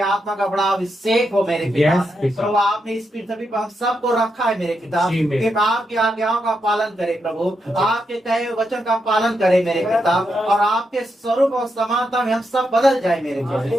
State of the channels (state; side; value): normal; both; correlation 0.83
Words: का बड़ा अभिषेक हो मेरे पिता। प्रभु आपने इस पृथ्वी पर हम सबको रखा है मेरे पिता, कि आपकी आज्ञाओं का पालन करे प्रभु, आपके कहे हुए वचन का पालन करे मेरे पिता, और आपके स्वरूप और समानता में हम सब बदल जाए मेरे